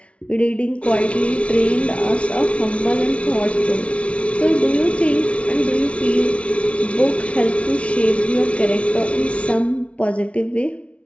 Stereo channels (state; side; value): late; right; 0.062 ms